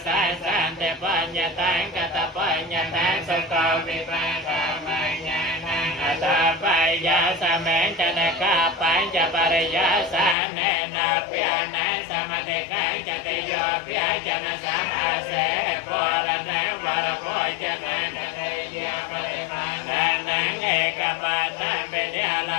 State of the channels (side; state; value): right; drops out; at 10.4 s